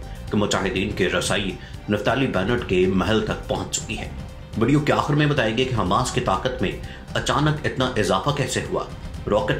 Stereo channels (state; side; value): identical; both; correlation 1.00